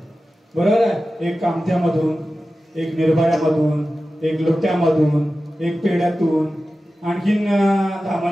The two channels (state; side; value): normal; both; correlation 0.94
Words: बरोबर आहे. एक कामत्यामधून, एक निर्भयामधून, एक लोट्यामधून, एक पेड्यातून, आणखीन